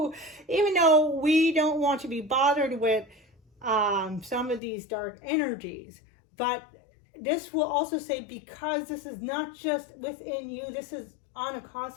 we don't want to be bothered with some of these dark energies, but this will also say, because this is not just within you, this is on a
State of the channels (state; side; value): drops out; right; at 4.6 s